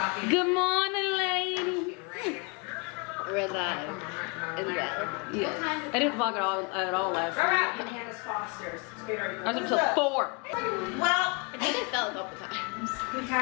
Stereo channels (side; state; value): right; quieter; 32.4 dB